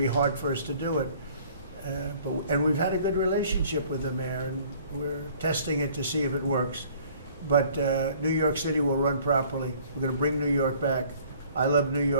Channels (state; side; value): inverted; both; correlation -0.55